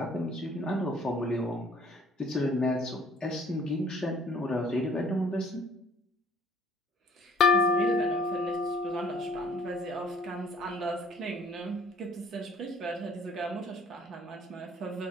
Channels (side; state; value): both; normal; correlation 0.55